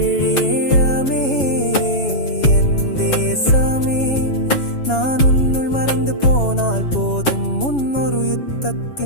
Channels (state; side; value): late; right; 7.2 ms